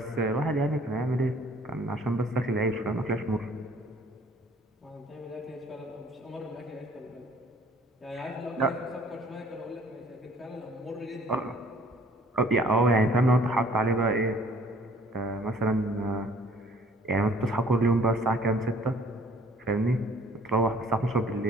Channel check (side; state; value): both; normal; correlation 0.56